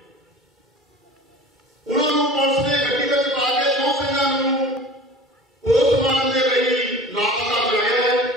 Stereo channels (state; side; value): normal; both; correlation 0.40